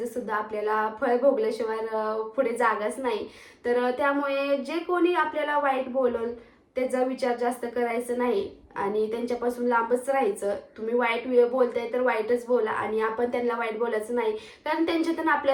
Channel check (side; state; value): both; identical; correlation 1.00